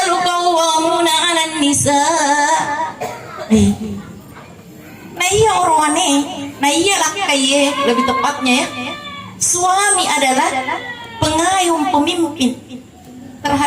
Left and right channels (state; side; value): identical; both; correlation 1.00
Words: qawwamuna 'alan nisa. Nah iya orangnya, nah iya laki lebih tepatnya ya. Suami adalah pengayom pemimpin